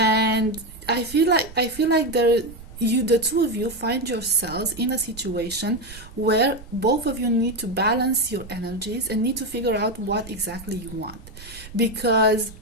I feel like the two of you find yourselves in a situation where both of you need to balance your energies and need to figure out what exactly you want. Because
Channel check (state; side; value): noise; right; rumble, 17 dB below the sound